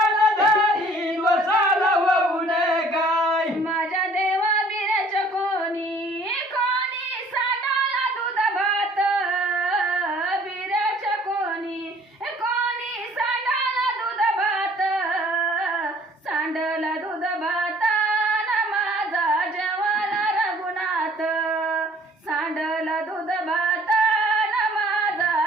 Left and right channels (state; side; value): normal; both; correlation 0.55